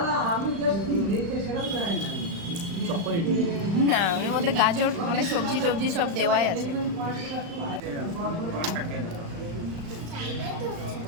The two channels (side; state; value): left; late; 35 ms